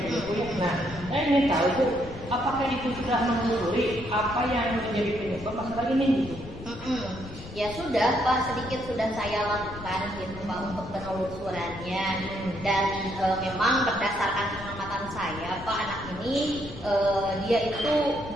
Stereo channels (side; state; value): left; noise; rumble, 14 dB below the sound